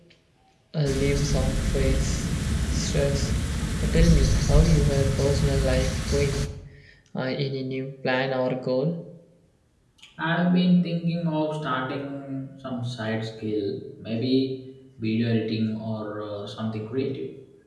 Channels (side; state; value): both; identical; correlation 1.00